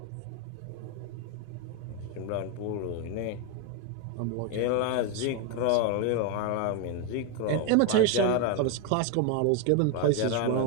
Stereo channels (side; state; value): both; different; correlation 0.01